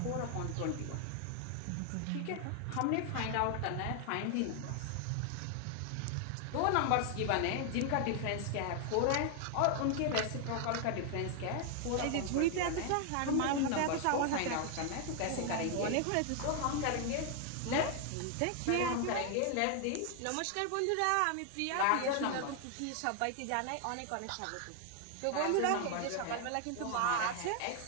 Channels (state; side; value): different; both; correlation 0.00